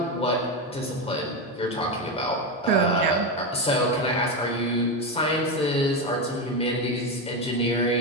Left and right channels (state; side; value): normal; both; correlation 0.13